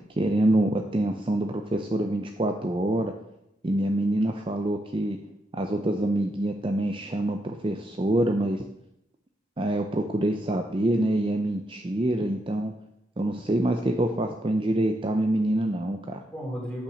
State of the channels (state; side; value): normal; both; correlation 0.80